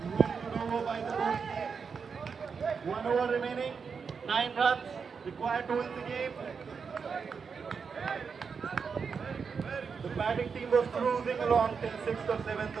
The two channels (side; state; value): left; quieter; 5.8 dB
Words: Over by the ball. 1 over remaining. 9 runs required to win the game. The batting team was cruising along till 6th or 7th